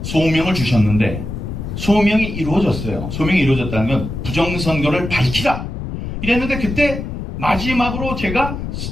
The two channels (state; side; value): noise; left; rumble, 6 dB below the sound